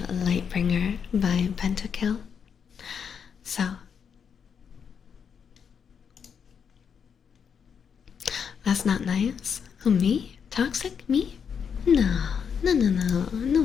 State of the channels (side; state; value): right; quieter; 7.0 dB